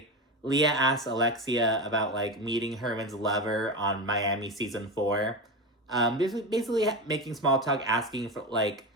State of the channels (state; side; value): normal; both; correlation 0.20